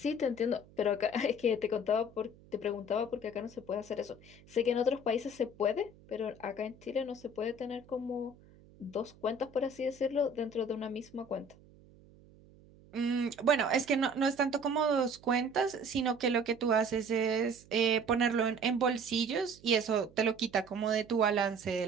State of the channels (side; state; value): right; noise; hum, 25 dB below the sound